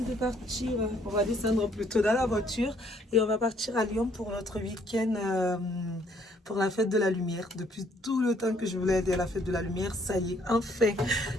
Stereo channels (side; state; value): both; normal; correlation 0.65